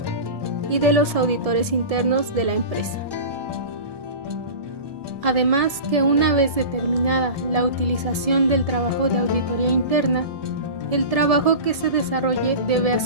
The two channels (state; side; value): late; left; 1.7 ms